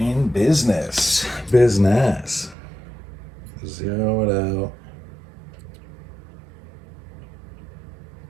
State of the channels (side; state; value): left; drops out; at 2.6 s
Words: business. Business. Zero it out.